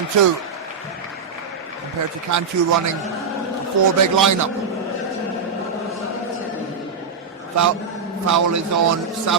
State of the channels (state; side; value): quieter; left; 5.2 dB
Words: Compared to Cantu running a 4 big lineup. Foul is on